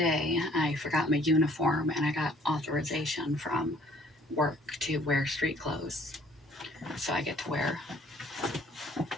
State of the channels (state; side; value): normal; both; correlation 0.58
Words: I forgot my uniform and I got authorization from work to wear street clothes. So I get to wear